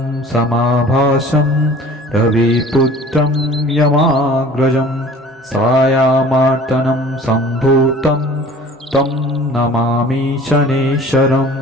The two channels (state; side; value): normal; both; correlation 0.47